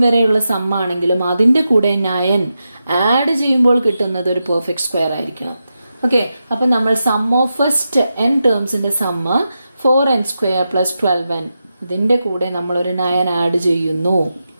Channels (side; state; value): both; inverted; correlation -0.89